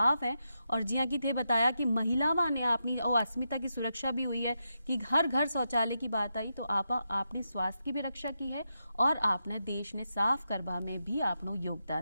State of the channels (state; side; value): inverted; both; correlation -0.86